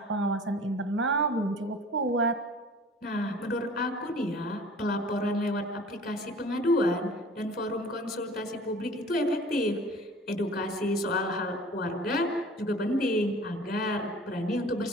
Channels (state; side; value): normal; both; correlation 0.46